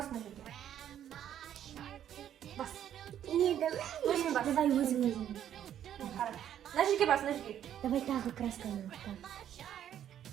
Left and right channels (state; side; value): quieter; left; 10.4 dB